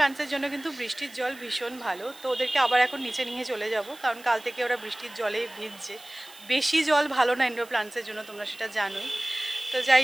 জন্য কিন্তু বৃষ্টির জল ভীষণ ভালো। তো ওদেরকে আবার এখন নিচে নিয়ে চলে যাব, কারণ কাল থেকে ওরা বৃষ্টির জলে ভিজছে। বেশি জল ভালো না ইনডোর প্লান্টসের জন্য, তোমরা সেটা জানোই। তো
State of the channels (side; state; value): right; noise; hiss, 21 dB below the sound